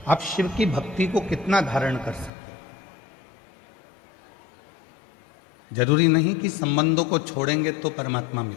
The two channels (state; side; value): drops out; right; at 2.3 s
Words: आप शिव की भक्ति को कितना धारण कर सकते हैं। जरूरी नहीं कि संबंधों को छोड़ेंगे तो परमात्मा